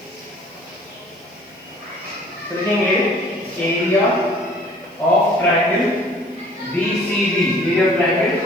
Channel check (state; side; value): noise; right; hiss, 30 dB below the sound